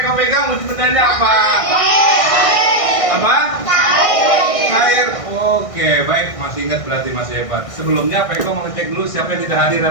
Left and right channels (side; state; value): right; late; 1.6 ms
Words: wujud bendanya apa? Apa? Air. Oke, baik. Masih ingat berarti masih hebat. Sebelumnya Peko mau ngecek dulu siapa yang tidak hadir